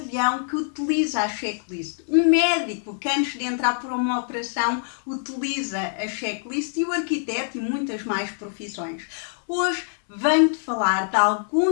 que utiliza a checklist, um médico que antes de entrar por uma operação utiliza a checklist e o arquiteto e muitas mais profissões. Hoje venho-te falar de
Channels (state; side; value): silent; right; 62 dB below the other